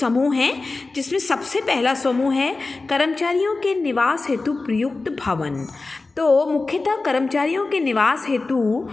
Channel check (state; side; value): quieter; right; 3.6 dB